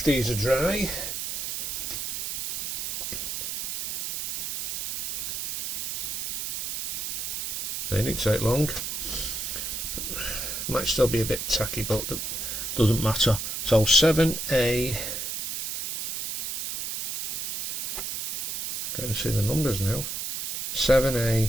these are dry. They didn't take long. Might still be a bit tacky, but that doesn't matter. So 7A. Can't see the numbers now.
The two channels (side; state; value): right; noise; hiss, 2 dB below the sound